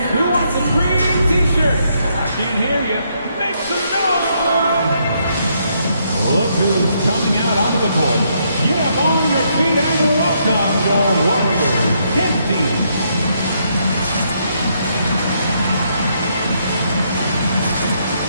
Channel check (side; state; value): both; inverted; correlation -0.74